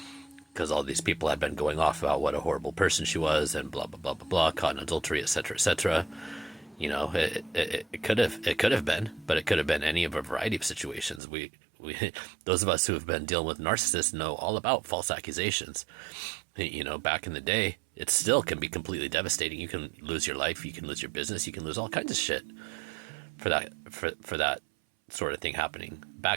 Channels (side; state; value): left; drops out; at 11.2 s